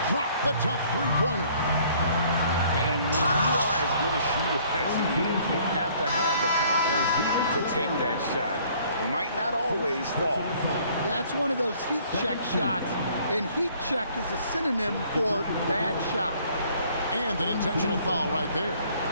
drop the tough 3-pointer. And when you are as good a shooter as he is, you have to have the confidence to take that shot. It might not always fall. Yeah, it's one of those heat check shots. And heat check is a synonym for bad shot. And an intentional foul right there.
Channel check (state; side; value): inverted; both; correlation -0.59